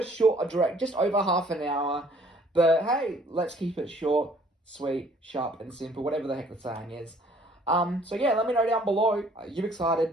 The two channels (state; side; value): normal; both; correlation 0.59